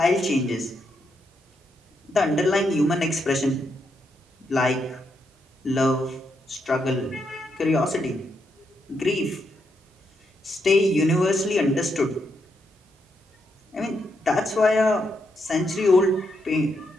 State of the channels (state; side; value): normal; both; correlation 0.80